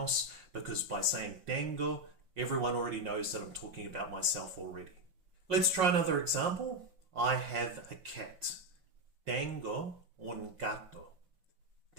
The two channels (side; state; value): left; late; 5.6 ms